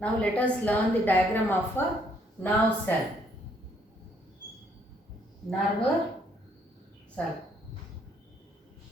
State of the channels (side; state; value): both; normal; correlation 0.68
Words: Now let us learn the diagram of a nerve cell. Nerve cell.